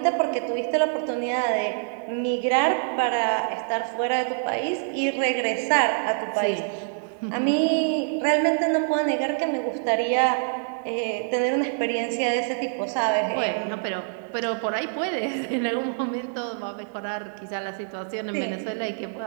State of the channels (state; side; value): silent; left; digital silence